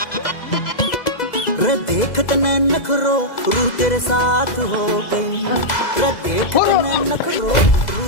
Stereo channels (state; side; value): late; right; 2.0 ms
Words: रे देख तने नखरो रूह तेरे साथ हो गई। रे देख तने नखरो